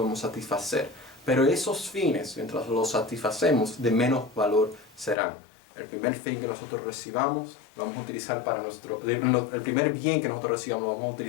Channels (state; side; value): drops out; right; at 5.2 s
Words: satisfacer. Pero esos fines, mientras los satisfacemos, de menos valor serán. El primer fin que nosotros recibamos, lo vamos a utilizar para el primer bien que nosotros recibamos, lo vamos a